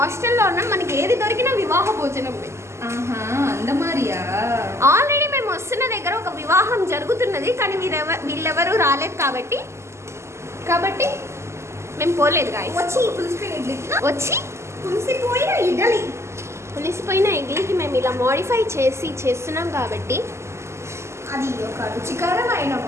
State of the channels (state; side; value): late; left; 0.13 ms